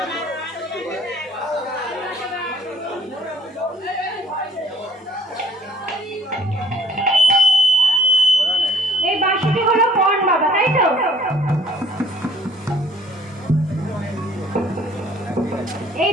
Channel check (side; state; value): both; normal; correlation 0.58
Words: এই বাঁশিটি হলো পণ বাবা, তাই তো? এই